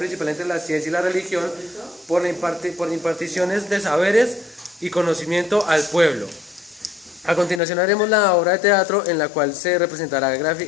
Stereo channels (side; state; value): right; drops out; at 7.6 s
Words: entre la ciencia y la religión por imparticiones de saberes y conocimiento al pueblo. A continuación haremos la obra de teatro en la cual se representará